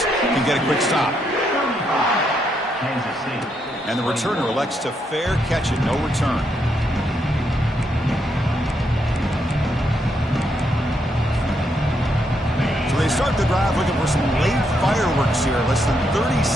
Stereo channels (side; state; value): both; normal; correlation 0.78